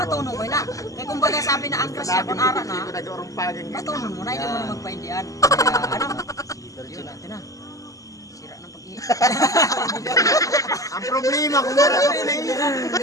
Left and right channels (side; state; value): right; late; 0.16 ms